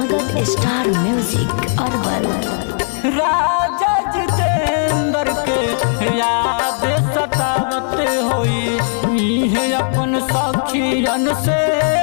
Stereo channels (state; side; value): silent; right; 68 dB below the other